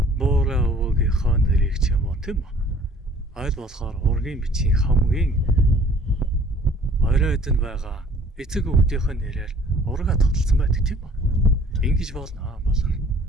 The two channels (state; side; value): normal; both; correlation 0.54